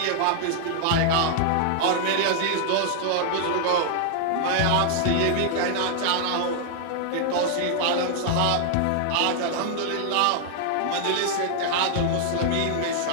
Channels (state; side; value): different; both; correlation 0.00